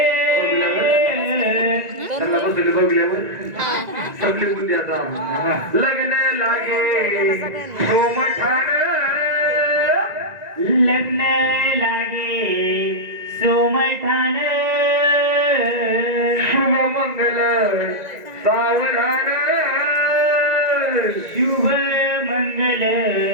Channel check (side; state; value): left; late; 1.9 ms